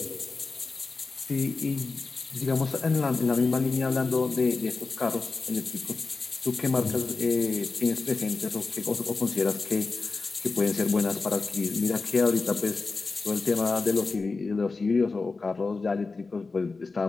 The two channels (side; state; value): right; quieter; 4.0 dB